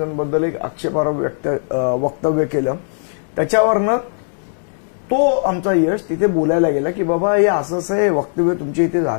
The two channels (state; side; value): silent; right; digital silence